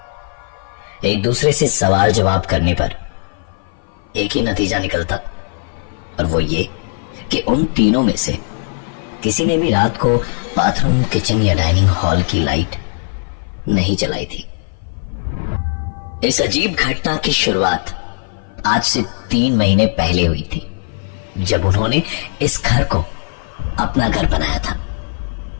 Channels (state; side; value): silent; right; 56 dB below the other